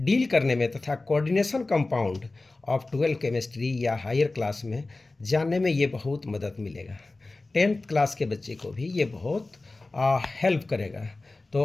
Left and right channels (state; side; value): quieter; right; 3.2 dB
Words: डील करने में तथा कोऑर्डिनेशन कंपाउंड ऑफ 12 केमिस्ट्री या हायर क्लास में जानने में ये बहुत मदद मिलेगा। 10th क्लास के बच्चे को भी ये बहुत हेल्प करेगा।